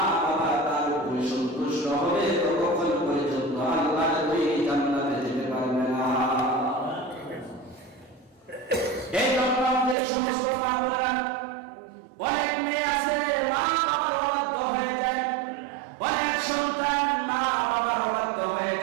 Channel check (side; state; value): left; drops out; at 10.0 s